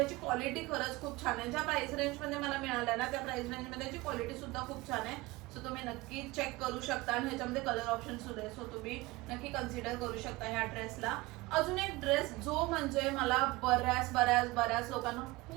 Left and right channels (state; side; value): quieter; left; 21.3 dB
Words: क्वालिटी खरंच खूप छान आहे. ज्या प्राइस रेंजमध्ये मला मिळाल्या ना त्या प्राइस रेंजमध्ये ह्याची क्वालिटी सुद्धा खूप छान आहे. सो तुम्ही नक्की चेक करू शकता आणि ह्याच्यामध्ये कलर ऑप्शन सुद्धा आहे. सो तुम्ही नक्की कन्सिडर करू शकता ह्या ड्रेसला. अजून एक ड्रेस जो म्हणजे मला बऱ्याच लोकांना